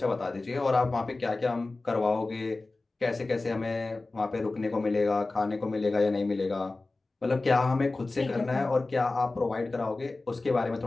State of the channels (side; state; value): right; quieter; 3.3 dB